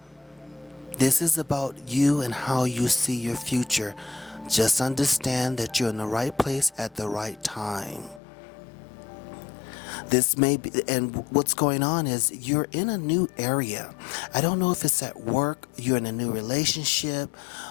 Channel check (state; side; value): drops out; right; at 8.2 s